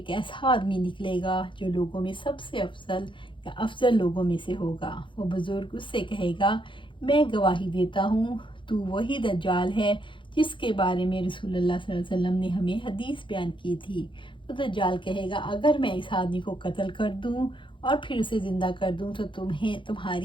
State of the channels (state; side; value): late; right; 0.24 ms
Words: ایسا آدمی نکلے گا جو لوگوں میں سب سے افضل لوگوں میں سے ہوگا، وہ بزرگ اس سے کہے گا میں گواہی دیتا ہوں تو وہی دجال ہے جس کے بارے میں رسول اللہ صلی اللہ علیہ وسلم نے ہمیں حدیث بیان کی تھی۔ تو دجال کہے گا اگر میں اس آدمی کو قتل کر دوں اور پھر اسے زندہ کر دوں تو